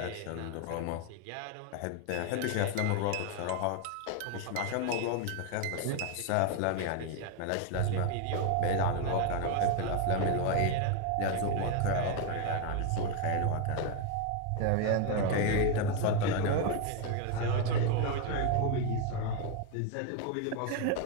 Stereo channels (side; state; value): both; different; correlation 0.01